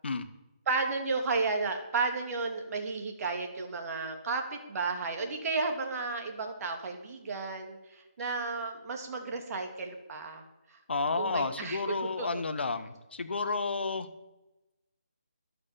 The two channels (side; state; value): both; inverted; correlation -0.53